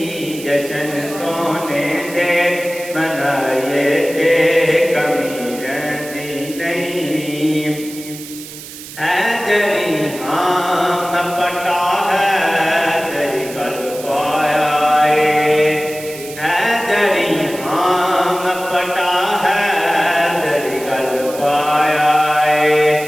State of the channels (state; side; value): noise; right; hiss, 14 dB below the sound